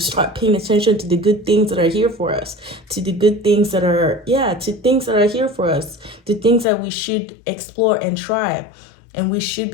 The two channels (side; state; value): right; drops out; at 6.7 s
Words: paying attention to the good things that are here for us, to the good things that are, to things that are here for us, to things that we should explore and try. And we should